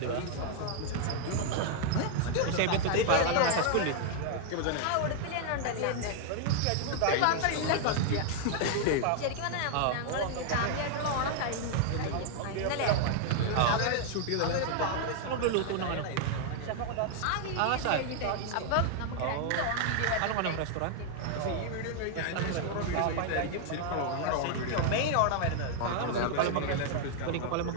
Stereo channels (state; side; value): different; both; correlation 0.00